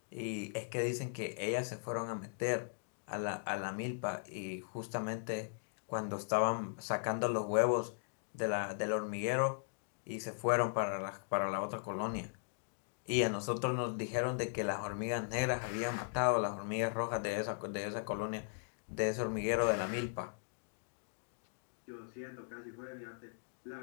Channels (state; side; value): silent; right; digital silence